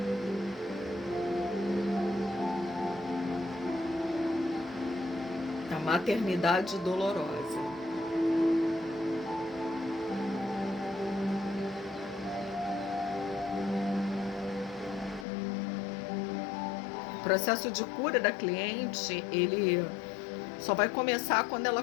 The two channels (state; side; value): drops out; right; at 15.2 s